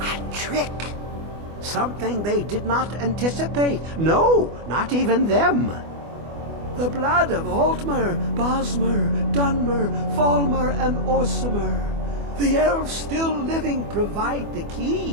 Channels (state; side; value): late; left; 24 ms